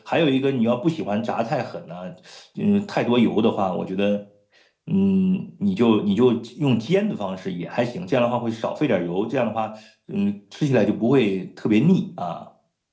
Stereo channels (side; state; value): both; identical; correlation 1.00